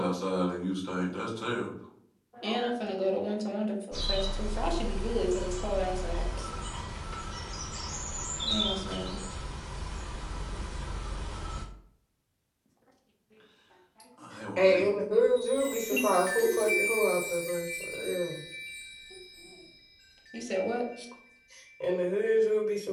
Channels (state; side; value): identical; both; correlation 1.00